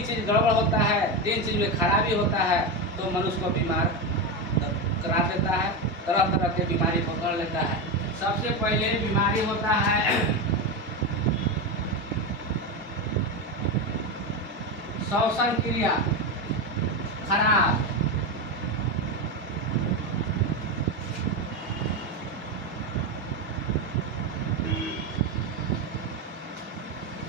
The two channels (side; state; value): both; normal; correlation 0.15